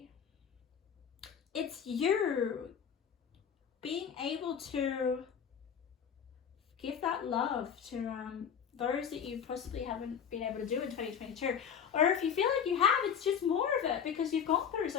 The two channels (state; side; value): quieter; right; 7.7 dB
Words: it's you being able to give that love to those that you possibly haven't been able to do in 2022. Or if you feel like you have, it's just more of it because you've gone through